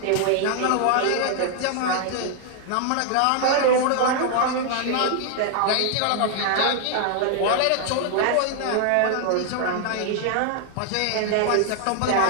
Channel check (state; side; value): different; both; correlation 0.00